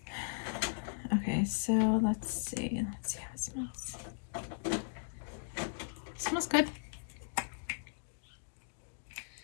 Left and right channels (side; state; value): right; silent; digital silence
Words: Okay, so let's see. Let's see how it smells. It smells good.